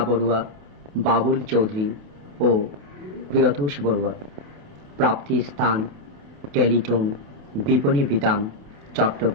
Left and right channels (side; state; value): left; late; 28 ms